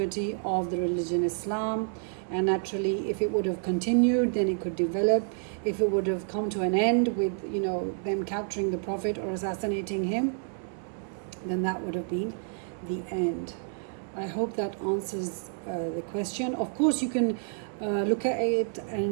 of the religion Islam. And naturally, if it would have continued, then it could develop. If it would have come to an end with them capturing the Prophet or assassinating him, then that would have been the end. I hope that answers the question. Of course, you can look at it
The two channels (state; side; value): silent; left; 59 dB below the other